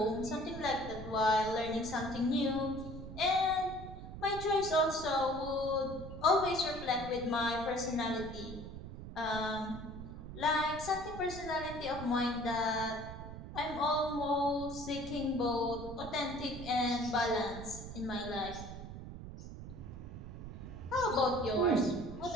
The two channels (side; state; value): right; noise; rumble, 10 dB below the sound